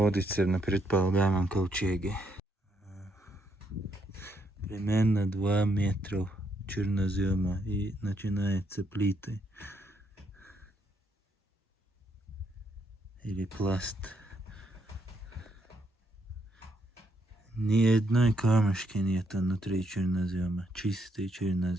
на предполагаемом ковчеге. Примерно 2 метра чернозема и начинаются плиты. Или пласт. Ни одной камешки нет внутри чернозема. Чистый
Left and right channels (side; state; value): both; normal; correlation 0.75